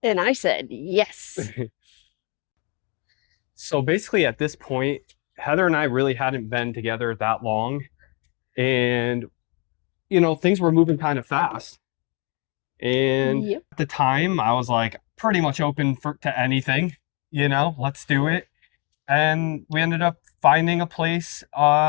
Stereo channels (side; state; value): right; quieter; 32.7 dB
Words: And I said, yes. So basically at this point, Heather and I really hadn't been together that long. And, you know, things were moving kind of fast. And At the time, I was like pretty much open to anything, you know, let's do it. And we ended up finding a place